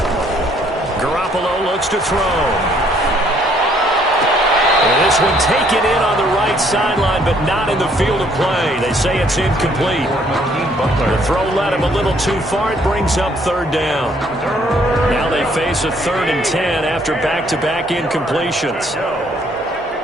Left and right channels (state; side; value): normal; both; correlation 0.65